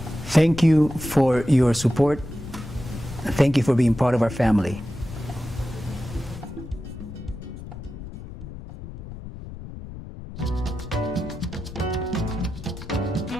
Thank you for your support. Thank you for being part of our family.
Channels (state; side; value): noise; left; rumble, 12 dB below the sound